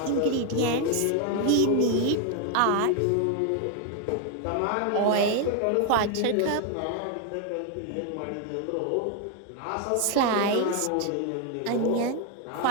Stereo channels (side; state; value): both; different; correlation 0.01